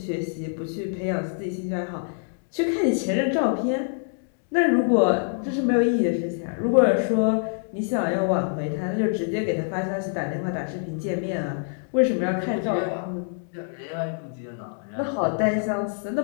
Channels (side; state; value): right; silent; digital silence